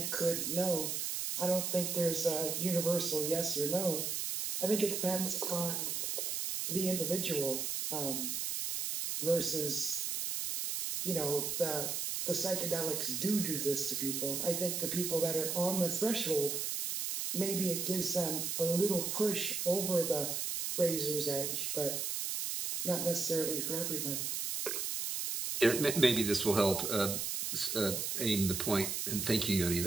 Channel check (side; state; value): right; noise; hiss, 2 dB below the sound